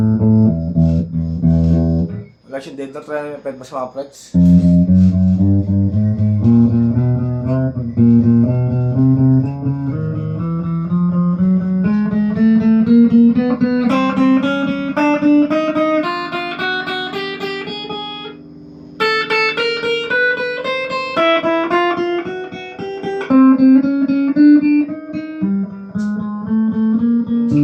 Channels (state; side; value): identical; both; correlation 1.00